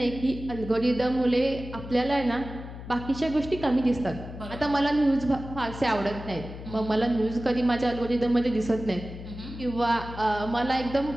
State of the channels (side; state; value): left; noise; hum, 11 dB below the sound